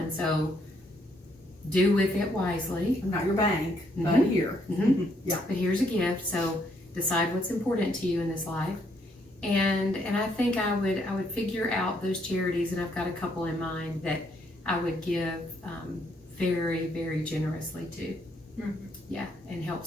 So do with it wisely. I'm not your bank, but Mhm. here. Yeah. But here's a gift, so decide what's important to you in this life. And I think I would figure out those charities, and I've got a couple in mind that I would give very, very generously to. Yeah, and help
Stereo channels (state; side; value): normal; both; correlation 0.72